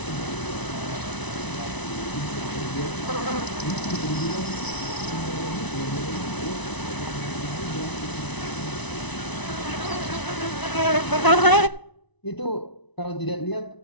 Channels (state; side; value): late; right; 1.0 ms